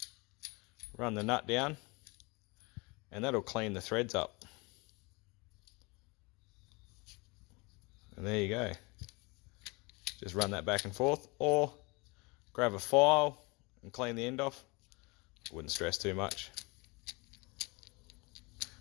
run the nut down, and that'll clean the threads up. And there you go. Just run that back and forth, or grab a file and clean the end off. Wouldn't stress too much.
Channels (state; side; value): quieter; right; 27.3 dB